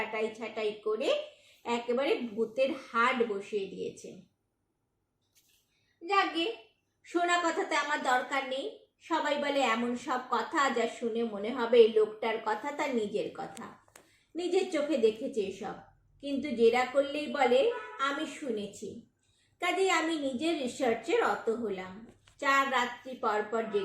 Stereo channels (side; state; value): both; identical; correlation 1.00